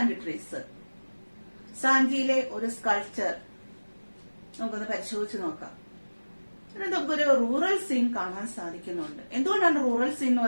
trees. സാഞ്ചിയിലെ ഒരു sculpture നമുക്കൊന്ന് പരിശോധിച്ച് നോക്കാം. നമുക്കൊരു rural scene കാണാൻ സാധിക്കുന്നുണ്ട്. എന്തുകൊണ്ടാണ് rural scene എന്ന്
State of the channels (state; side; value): inverted; both; correlation -1.00